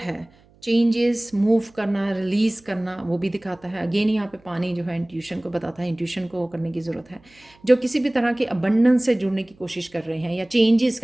है, चेंजेस, मूव करना, रिलीज़ करना, वो भी दिखाता है। अगेन यहाँ पे पानी जो है इंट्यूशन को बताता है, इंट्यूशन को करने की ज़रूरत है। जो किसी भी तरह के अबंडेंस से जुड़ने की कोशिश कर रहे हैं या चेंजेस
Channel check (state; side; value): noise; right; hum, 30 dB below the sound